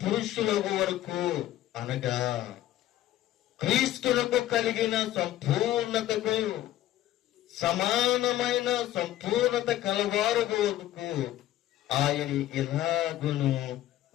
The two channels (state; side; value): quieter; right; 13.7 dB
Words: పురుషులకు వరకు, అనగా క్రీస్తులకు కలిగిన సంపూర్ణతకు సమానమైన సంపూర్ణత కలవారు వరకు ఆయన ఇలాగును